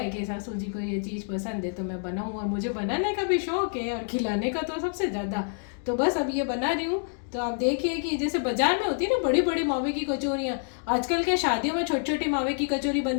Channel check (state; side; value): silent; right; 60 dB below the other